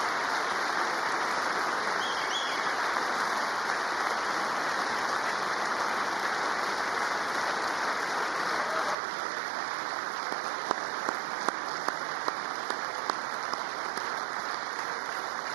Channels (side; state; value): left; drops out; at 9.0 s